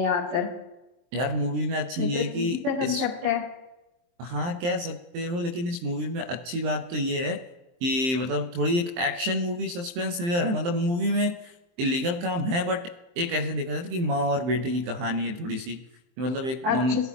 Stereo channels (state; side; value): late; left; 23 ms